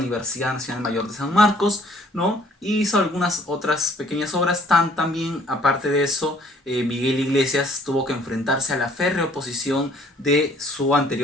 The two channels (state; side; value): normal; both; correlation 0.59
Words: Nacional Mayor de San Marcos, ¿no? Y hizo algunas otras pequeñas obras. También, aparte de eso, Miguel Iglesias tuvo que enfrentarse a la férrea oposición de su